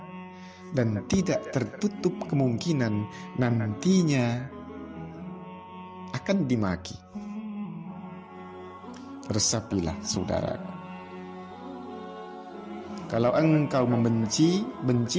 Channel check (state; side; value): identical; both; correlation 1.00